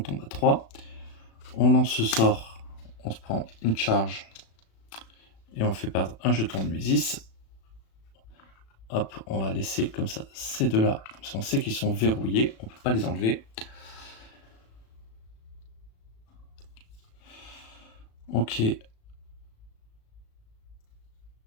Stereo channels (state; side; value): late; right; 36 ms